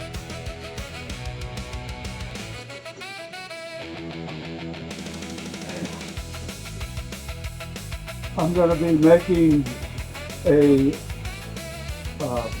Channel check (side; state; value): both; identical; correlation 1.00